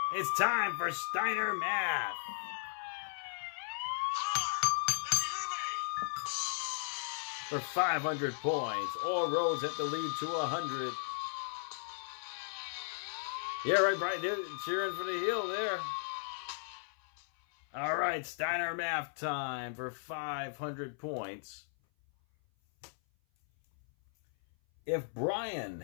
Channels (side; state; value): right; silent; 54 dB below the other